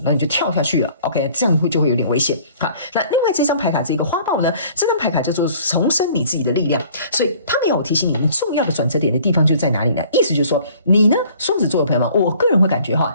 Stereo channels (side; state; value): both; inverted; correlation -0.54